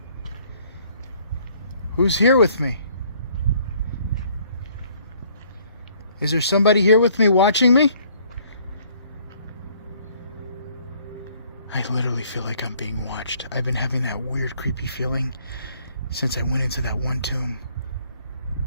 Who's here with me? Is there somebody here with me watching me? I literally feel like I'm being watched. I've been having that weird, creepy feeling since I went into that one tomb.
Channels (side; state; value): both; inverted; correlation -0.61